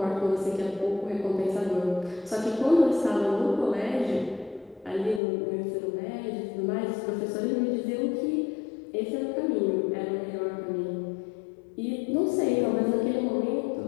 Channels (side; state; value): right; drops out; at 5.2 s